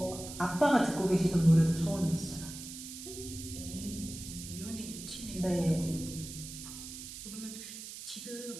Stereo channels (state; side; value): noise; right; hiss, 11 dB below the sound